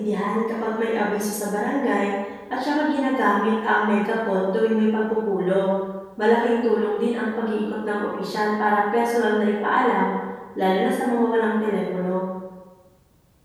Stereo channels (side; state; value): both; identical; correlation 1.00